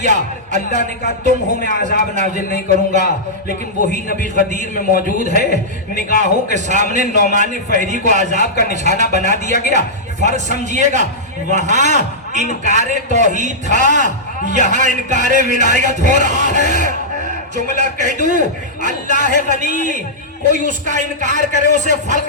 اللہ نے کہا تم ہو میں عذاب نازل نہیں کروں گا. لیکن وہی نبی غدیر میں موجود ہے، نگاہوں کے سامنے نعمان فہری کو عذاب کا نشانہ بنا دیا گیا. فرق سمجھیے گا، وہاں انکار توحید تھا، یہاں انکار ولایت ہو رہا ہے. جملہ کہہ دوں، اللہ غنی، کوئی اس کا انکار کرے اسے فرق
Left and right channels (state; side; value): normal; both; correlation -0.12